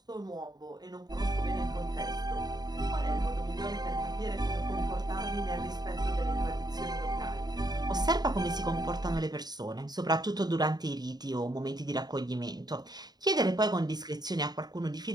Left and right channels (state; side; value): late; left; 0.20 ms